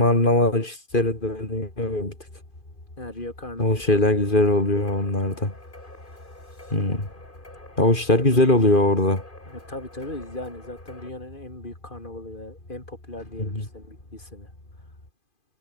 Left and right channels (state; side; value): late; right; 2.5 ms